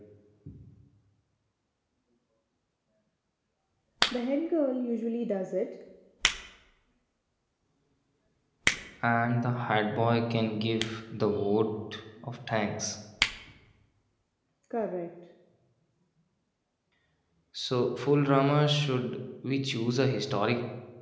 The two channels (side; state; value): both; identical; correlation 1.00